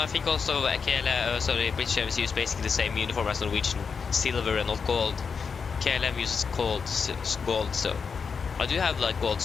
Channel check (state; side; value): quieter; right; 5.7 dB